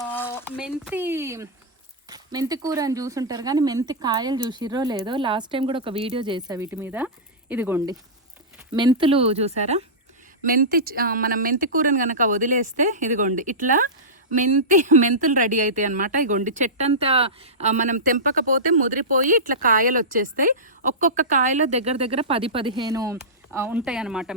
మెంతి కూర అని చూసుంటారు కానీ మెంతి కాయలు చూసిర్రో లేదో. లాస్ట్ టైం కూడా ఒక వీడియో చేసా వీటి మీద. ఇదిగోండి మెంతులు చూసారా, మనం మెంతి కూరని కనుక వదిలేస్తే ఇదిగోండి ఇట్లా మెంతులు రెడీ అవుతాయి అనమాట. ఇగోండి చెట్టంతా మనం తెంపకపోతే ముదిరిపోయి ఇట్లా కాయలు వచ్చేస్తాయి. ఒక్కొక్క కాయలో దగ్గర 10-15 ఉంటాయి అన్నమాట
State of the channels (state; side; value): normal; both; correlation -0.16